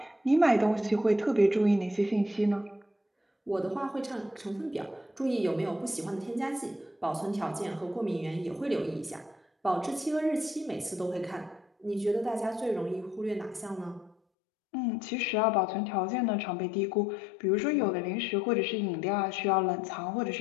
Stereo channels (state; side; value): drops out; right; at 14.2 s